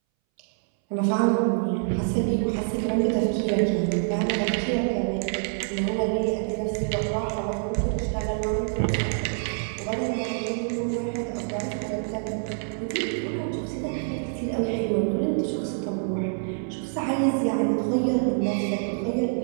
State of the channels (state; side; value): silent; left; 61 dB below the other